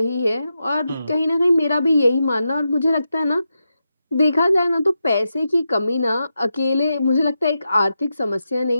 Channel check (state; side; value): inverted; both; correlation -0.88